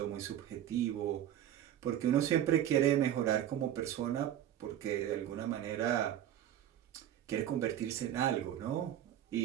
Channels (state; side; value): quieter; left; 11.3 dB